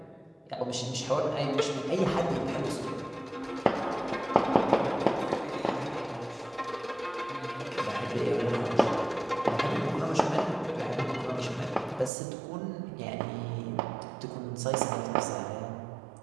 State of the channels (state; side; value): drops out; left; at 12.1 s